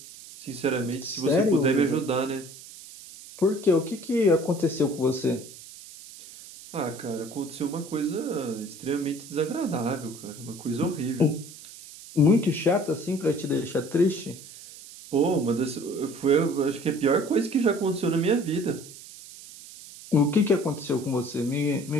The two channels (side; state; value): right; noise; hiss, 17 dB below the sound